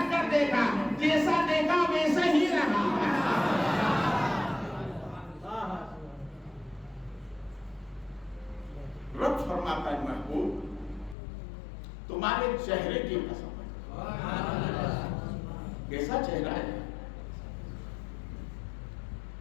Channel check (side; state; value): right; drops out; at 11.2 s